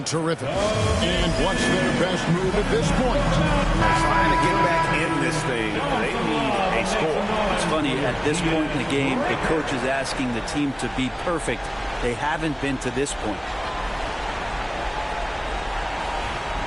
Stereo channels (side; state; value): both; identical; correlation 1.00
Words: terrific. And what's their best move at this point? Trying to get back in this thing. They need a score. It's funny, at this point in the game, the coach is asking the team to be perfect. They haven't been to this point.